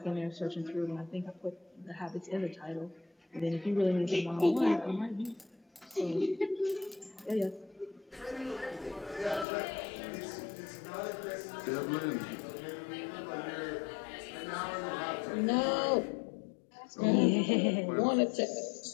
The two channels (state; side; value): drops out; right; at 9.5 s